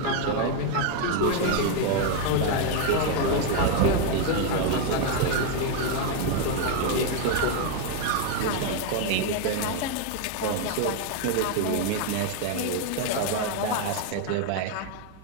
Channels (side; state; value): both; different; correlation 0.01